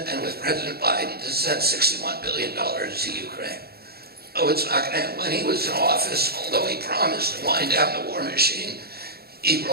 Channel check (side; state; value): left; late; 0.46 ms